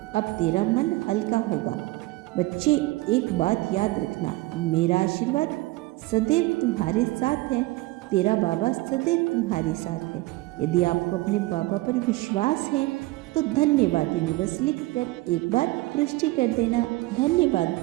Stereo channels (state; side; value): quieter; left; 20.4 dB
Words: अब तेरा मन हल्का होगा। बच्चे, एक बात याद रखना, मेरा आशीर्वाद सदैव तुम्हारे साथ है। तेरा बाबा सदैव तुम्हारे साथ है। यदि आपको अपने बाबा पर विश्वास है तो धन्यवाद यूनिवर्स लिखकर एक बार पुष्टि कर देना। धन्यवाद